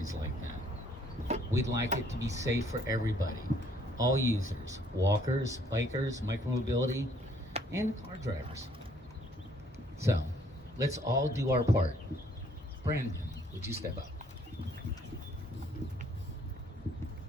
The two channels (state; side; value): normal; both; correlation 0.63